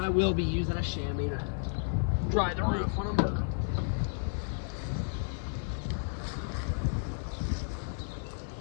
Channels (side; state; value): right; silent; 56 dB below the other